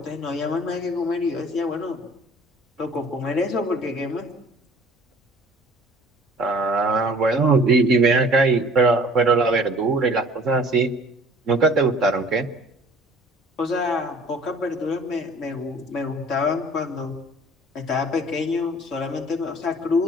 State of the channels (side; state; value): both; normal; correlation 0.50